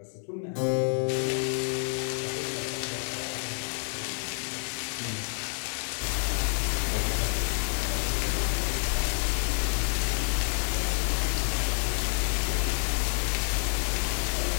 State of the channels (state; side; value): silent; right; 59 dB below the other